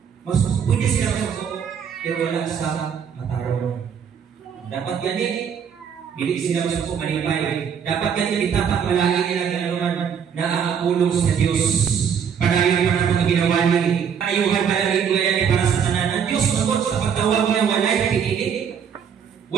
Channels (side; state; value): left; quieter; 7.5 dB